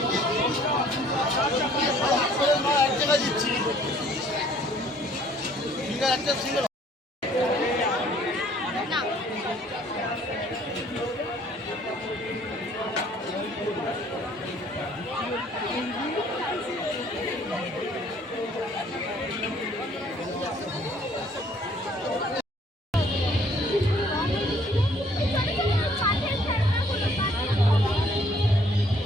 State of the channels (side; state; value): both; normal; correlation 0.59